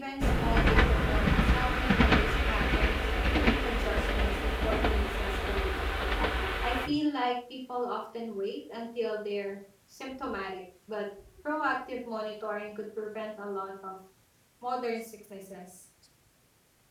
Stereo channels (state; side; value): identical; both; correlation 1.00